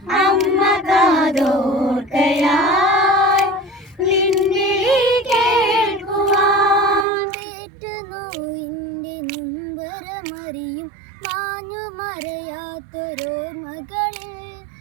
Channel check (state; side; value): drops out; left; at 7.1 s